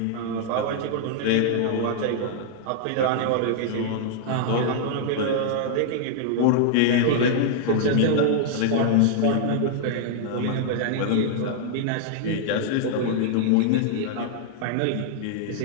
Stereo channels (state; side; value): different; both; correlation -0.01